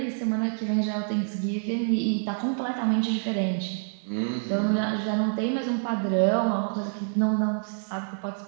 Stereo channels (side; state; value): left; silent; digital silence